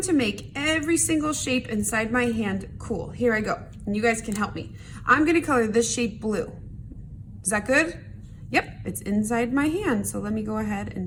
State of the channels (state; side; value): identical; both; correlation 1.00